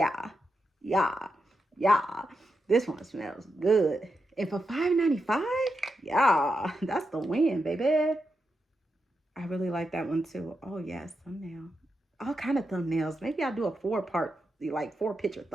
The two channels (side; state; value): both; normal; correlation 0.87